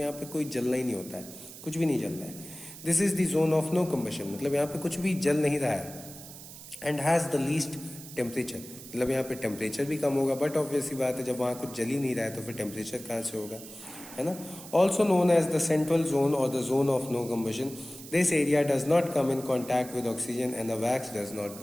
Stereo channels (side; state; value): right; noise; hiss, 15 dB below the sound